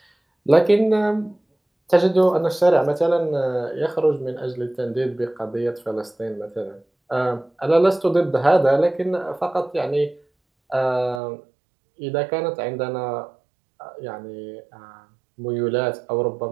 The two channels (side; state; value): left; drops out; at 11.2 s